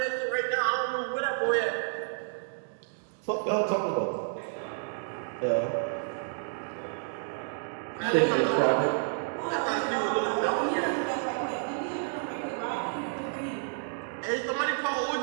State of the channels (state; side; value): silent; left; digital silence